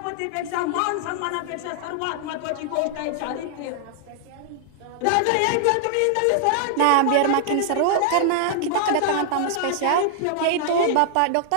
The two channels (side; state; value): both; different; correlation -0.01